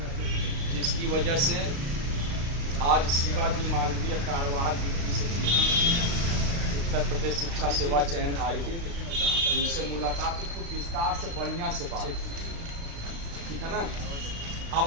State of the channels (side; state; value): left; late; 35 ms